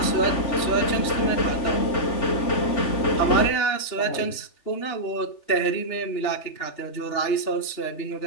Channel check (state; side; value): late; right; 3.4 ms